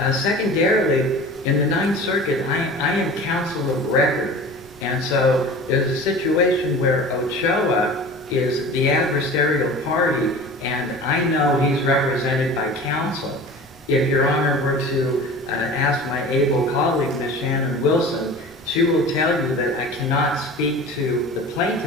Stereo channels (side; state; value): both; normal; correlation 0.38